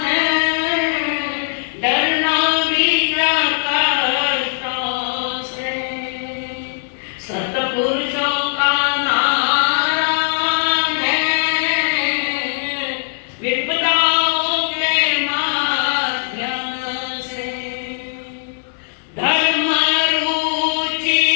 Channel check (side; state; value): right; silent; digital silence